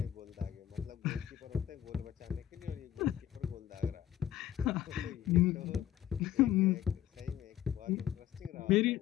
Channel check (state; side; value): quieter; right; 11.4 dB